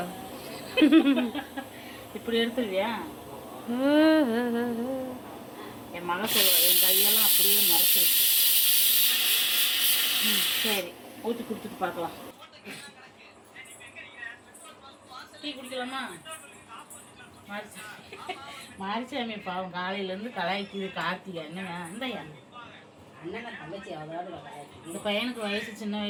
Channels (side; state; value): both; identical; correlation 1.00